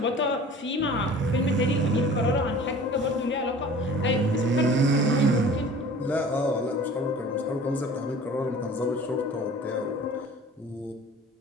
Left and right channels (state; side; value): normal; both; correlation 0.44